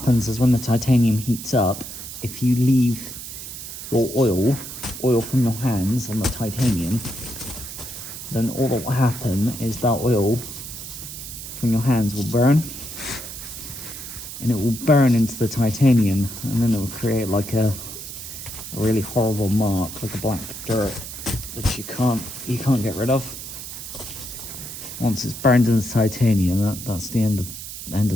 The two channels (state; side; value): noise; right; hiss, 10 dB below the sound